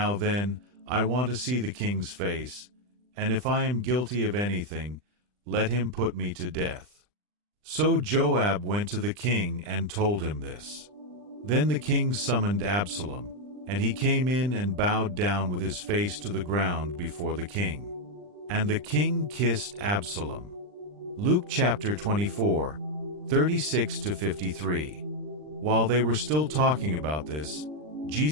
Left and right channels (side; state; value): left; late; 39 ms